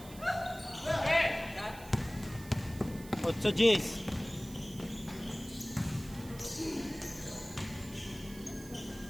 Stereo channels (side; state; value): right; noise; hiss, 18 dB below the sound